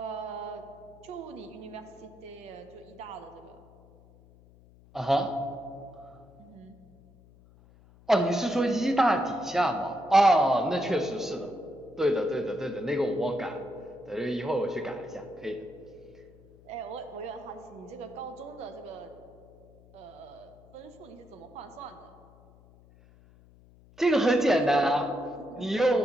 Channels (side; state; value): left; noise; hum, 25 dB below the sound